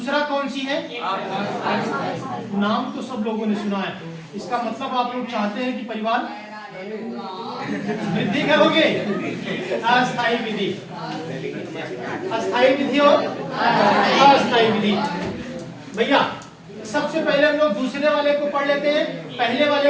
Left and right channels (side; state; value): both; identical; correlation 1.00